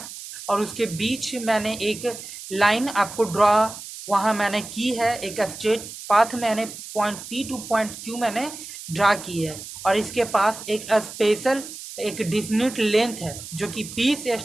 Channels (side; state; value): right; noise; hiss, 12 dB below the sound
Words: और उसके बीच मैंने एक लाइन आपको ड्रॉ वहाँ मैंने की है, एक स्ट्रेट पाथ मैंने point P two point Q मैंने ड्रा की है, और इसके पास एक स्पेशल एक डिफिनिट लेंथ है जो कि पी से